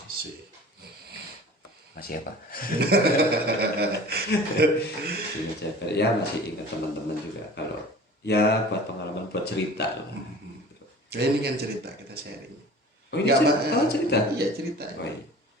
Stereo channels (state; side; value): normal; both; correlation 0.42